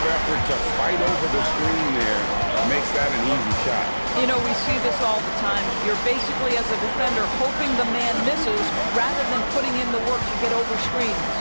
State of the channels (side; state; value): both; inverted; correlation -1.00